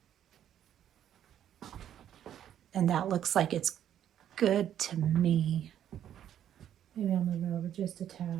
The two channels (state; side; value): quieter; left; 10.4 dB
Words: And that looks like it's good to me. Maybe I'll move it over just a